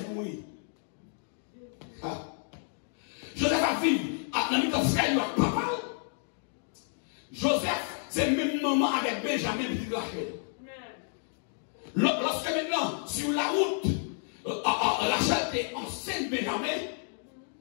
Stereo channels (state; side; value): silent; right; 57 dB below the other